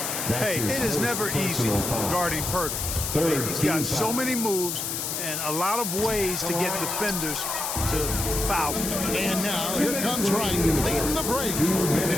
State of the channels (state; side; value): noise; left; hiss, 3 dB below the sound